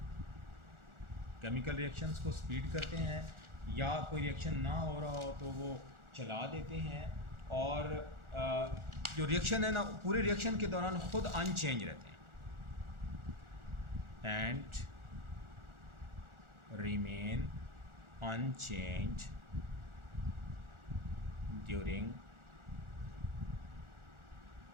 Chemical reactions को स्पीड करते हैं, या कोई रिएक्शन ना हो रहा हो तो वो चला देते हैं। और जो रिएक्शन है ना, पूरे रिएक्शन के दौरान ख़ुद अनचेंज रहते हैं and remain unchanged during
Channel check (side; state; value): left; late; 1.4 ms